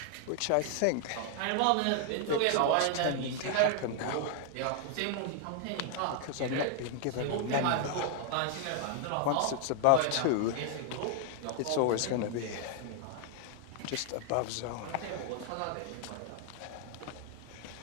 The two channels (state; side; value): different; both; correlation 0.00